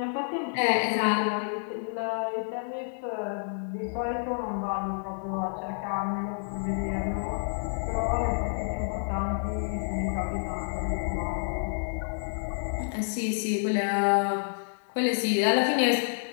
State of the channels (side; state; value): right; silent; 59 dB below the other